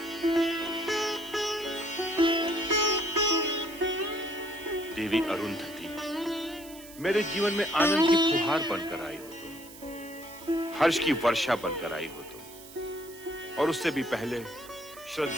देवी अरुंधति, मेरे जीवन में आनंद की फुहार बनकर आई हो तुम, हर्ष की वर्षा बनकर आई हो तुम, और उससे भी पहले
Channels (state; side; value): noise; right; hiss, 18 dB below the sound